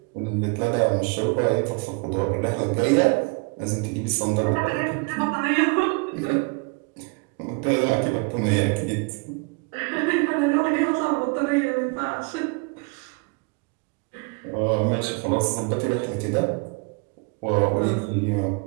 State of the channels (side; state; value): left; quieter; 31.8 dB